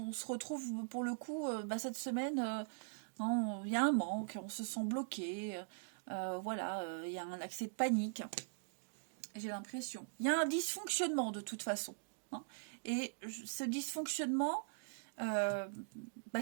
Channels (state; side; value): silent; left; digital silence